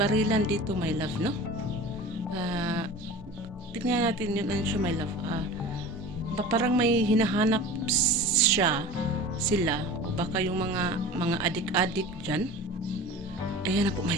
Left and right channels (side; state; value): both; normal; correlation 0.36